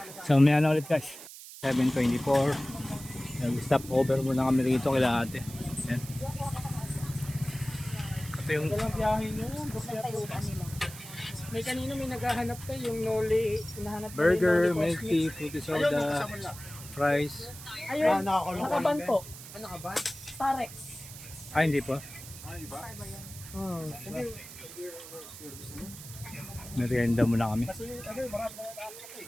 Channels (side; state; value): right; noise; hiss, 14 dB below the sound